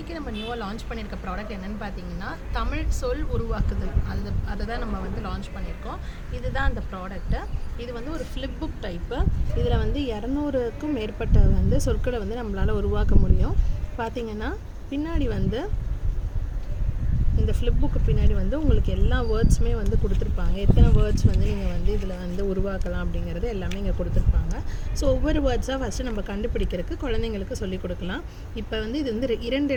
நம்ம நியூவாக லான்ச் பண்ணியிருக்க ப்ராடக்ட் என்னென்னு பார்த்தீங்கன்னா தமிழ் சொல் உருவாக்குதல். அதை தான் நம்ம வந்து லான்ச் பண்ணியிருக்கோம். இதுதான் அந்த ப்ராடக்ட்டு. இது வந்து ஒரு ஃப்ளிப் புக் டைப்பு. இதில் வந்து 200க்கும் மேற்பட்ட வந்து சொற்களை வந்து நம்மளால் உருவாக்க முடியும். பார்த்திங்கன்னா பின்னாடி வந்து இந்த ஃப்ளிப் புக்கு பின்னாடி வந்து உங்களுக்கு எல்லா வேர்ட்ஸுமே வந்து கொடுத்துருப்பாங்க. எத்தனை வேர்ட்ஸ் வந்து நீங்கள் வந்து இதில் வந்து உருவாக்கலாம் அப்படிங்கிறது எல்லாமே இங்கே கொடுத்துருப்பாங்க. ஸோ ஒவ்வொரு வேர்ட்ஸாக ஃபஸ்ட்டு நம்ம கண்டுபிடிக்கிறதுக்கு குழந்தைங்களுக்கு சொல்லிக் கொடுக்கலாம். இப்போ வந்து இது வந்து 2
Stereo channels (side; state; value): both; identical; correlation 1.00